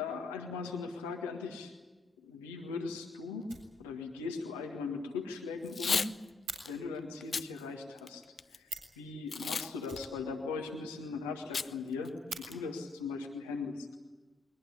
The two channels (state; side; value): quieter; right; 4.0 dB